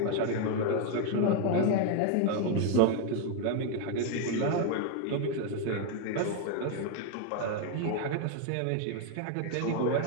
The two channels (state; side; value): different; both; correlation 0.01